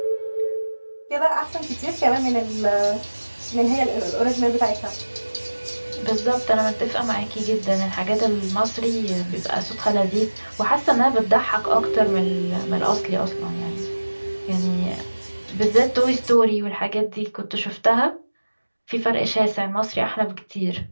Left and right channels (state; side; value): inverted; both; correlation -1.00